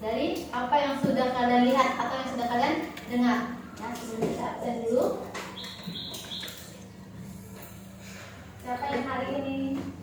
dari apa yang sudah kalian lihat atau yang sudah kalian dengar. Ya, sebelum kita absen dulu. Siapa yang hari ini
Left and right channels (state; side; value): identical; both; correlation 1.00